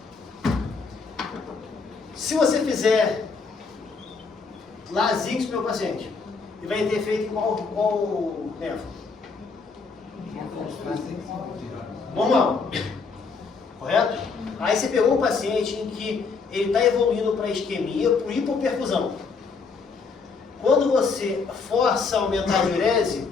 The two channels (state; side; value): quieter; right; 4.8 dB